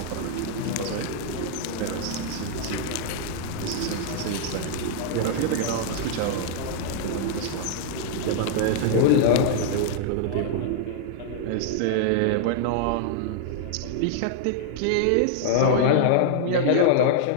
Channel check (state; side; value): different; both; correlation -0.01